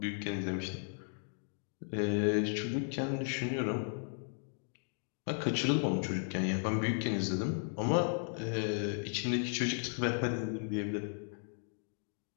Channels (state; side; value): silent; right; 54 dB below the other